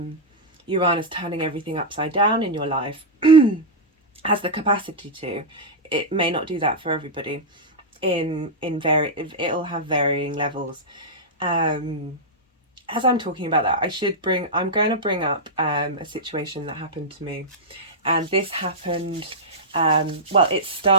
Uranus turning everything upside down in your life, has the capacity to. It may not do that for everybody. It'll have varying levels. As I'm talking about that, I'm going to bring up a situation that happened to me, and this happened. Well, it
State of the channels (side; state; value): both; normal; correlation -0.08